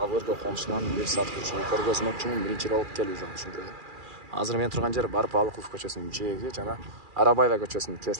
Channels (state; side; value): late; left; 2.4 ms